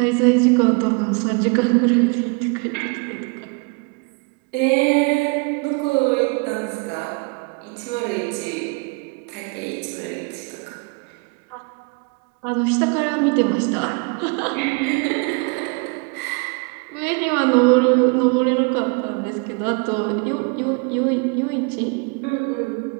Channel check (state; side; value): quieter; left; 31.8 dB